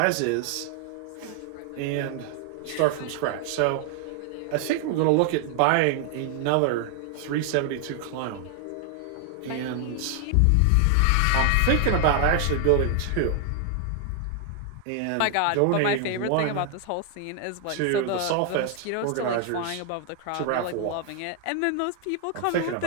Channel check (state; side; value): different; both; correlation 0.00